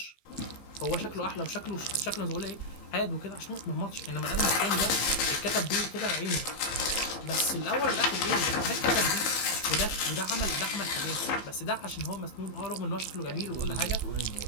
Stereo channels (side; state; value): right; late; 15 ms